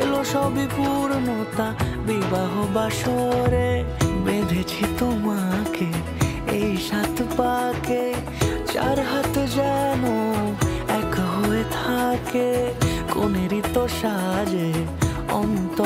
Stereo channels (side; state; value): both; identical; correlation 1.00